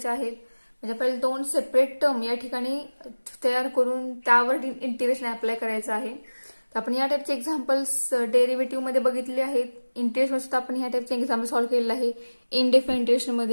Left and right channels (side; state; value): both; inverted; correlation -1.00